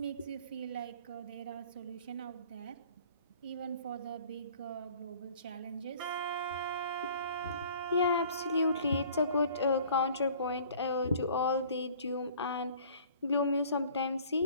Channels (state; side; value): inverted; both; correlation -0.51